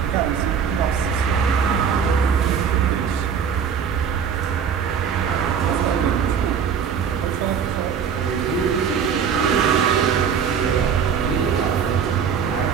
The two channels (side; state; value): left; quieter; 7.2 dB